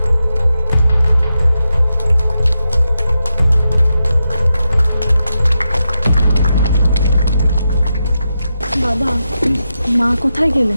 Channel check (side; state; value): both; inverted; correlation -0.87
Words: বাবা, মা কোথায়